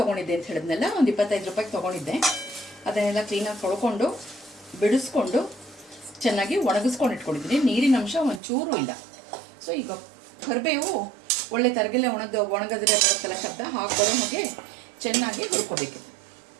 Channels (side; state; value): left; drops out; at 8.4 s